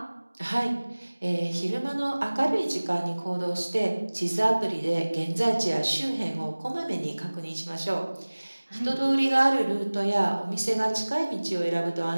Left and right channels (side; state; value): both; inverted; correlation -1.00